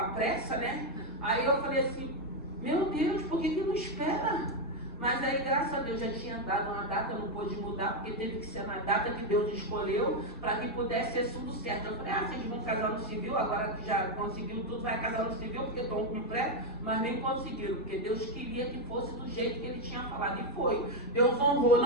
pressa, né? Aí eu falei assim, meu Deus, por que não espera? Mas aí, graças a Deus, já tinha dado uma data, não pôde mudar, porque teve que ser na data que Deus escolheu, para que pudesse ser tudo certo. Eu falei, vocês vão casar no civil, agora que já conseguiu tudo, vai casar no civil, porque estão com pressa, mas nem conseguiram, porque Deus queria que fosse do jeito que Ele tinha falado, e foi. Deus honrou,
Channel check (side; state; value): both; normal; correlation 0.04